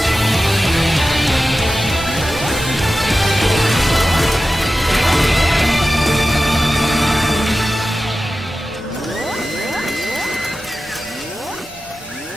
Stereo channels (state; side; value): normal; both; correlation 0.93